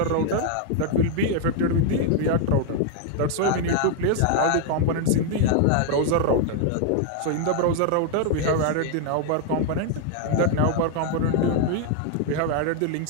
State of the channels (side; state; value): both; different; correlation 0.00